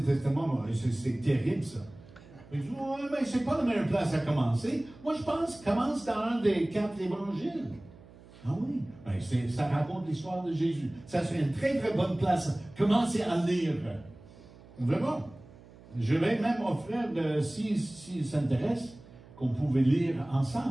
c'est terrible ça. Il dit, ouais, mais c'est pas la meilleure place à commencer. Moi, je pense, commence dans un des 4 évangiles. Ah oui, ben, ça raconte l'histoire de Jésus. Ça serait une très, très bonne place. Commencez à lire. On verra. Je vais même offrir, s'il s'intéresse, qu'on pouvait lire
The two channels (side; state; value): right; noise; hum, 22 dB below the sound